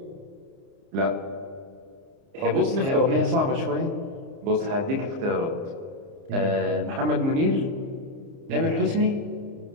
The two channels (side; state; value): left; late; 30 ms